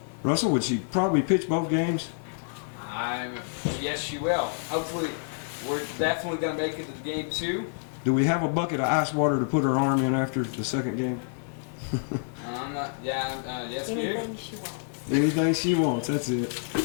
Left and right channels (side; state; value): right; silent; digital silence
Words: Russell, would she probably pitch both games? Yes, she will. Hopefully, we're definitely going to make it to game 2. Do we have a bucket of ice water to put her arm in after the second game? Yes, we do. Anything she wants. Anything she wants, that's it.